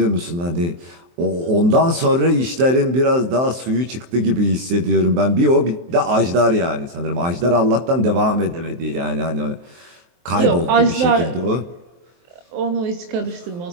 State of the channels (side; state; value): left; late; 23 ms